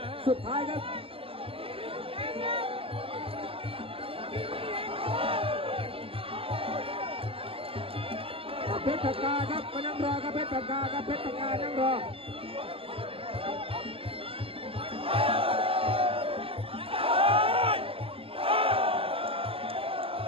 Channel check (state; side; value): late; left; 0.27 ms